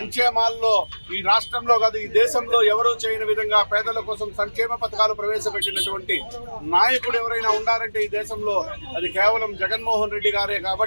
ఈ రాష్ట్రంలో కాదు ఈ దేశంలో ఎవరూ చేయని విధంగా పేదల కోసం సంక్షేమ పథకాలు ప్రవేశపెట్టినటువంటి నాయకుడు ఎవరైనా ఉన్నారంటే ఈ దేశంలో అది కేవలం జగన్మోహన్ రెడ్డి గారే.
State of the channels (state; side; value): inverted; both; correlation -1.00